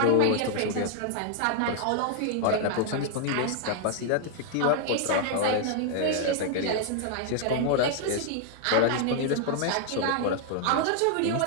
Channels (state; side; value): different; both; correlation 0.00